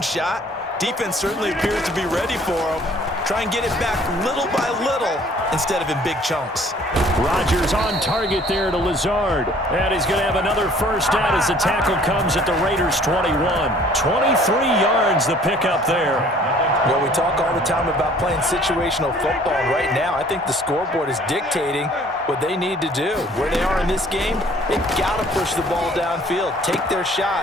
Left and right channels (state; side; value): normal; both; correlation 0.55